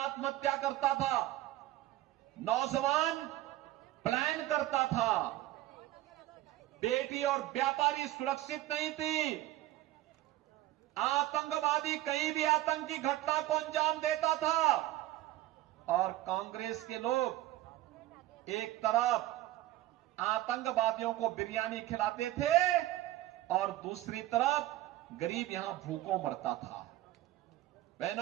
करता था, नौजवान प्लान करता था, बेटी और व्यापारी सुरक्षित नहीं थी, आतंकवादी कहीं भी आतंकी घटना को अंजाम देता था, और कांग्रेस के लोग एक तरफ आतंकवादियों को बिरयानी खिलाते थे और दूसरी तरफ गरीब यहां भूखों मरता था।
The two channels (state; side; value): quieter; left; 15.6 dB